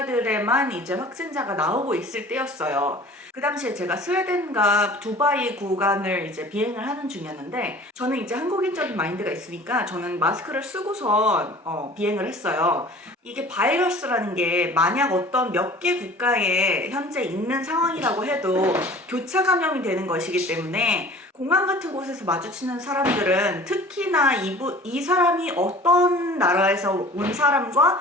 이제 확진자가 나오고 있을 때였어요. 그 당시에 제가 스웨덴과 두바이 구간을 이제 비행을 하는 중이었는데, 저는 이제 한국인적인 마인드가 있으니까 저는 마스크를 쓰고선 비행을 했어요. 이게 바이러스라는 게 만약 어떤 몇 개 국가에 현재 있는 상황이라고 해도 교차 감염이 되는 것이기 때문에 공항 같은 곳에서 마주치는 사람들은 특히나 이 사람이 어떤 나라에서 온 사람과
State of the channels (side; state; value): both; normal; correlation 0.45